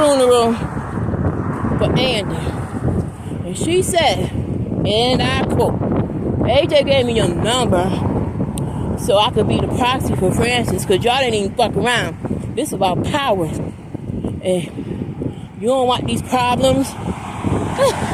for Andy. And she said, and I quote, AJ gave me your number so I could be the proxy for Francis, because y'all didn't even fuck around. This is about power. And you don't want these problems.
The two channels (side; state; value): both; identical; correlation 1.00